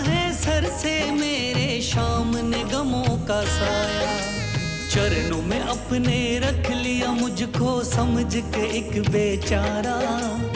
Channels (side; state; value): both; identical; correlation 1.00